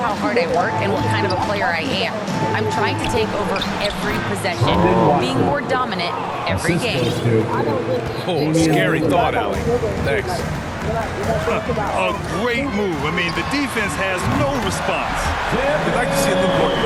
hard I work and what kind of a player I am. I'm trying to take over every possession, being more dominant every game." Oh, scary thought, Allie. Thanks. A great move. I mean, the defense has no response. I'd like to see a little more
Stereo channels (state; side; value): identical; both; correlation 1.00